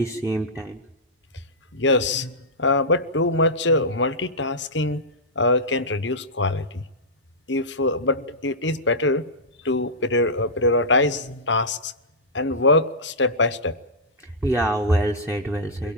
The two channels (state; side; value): normal; both; correlation -0.12